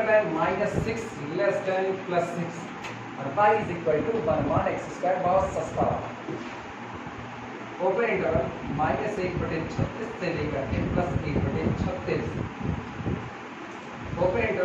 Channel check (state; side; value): identical; both; correlation 1.00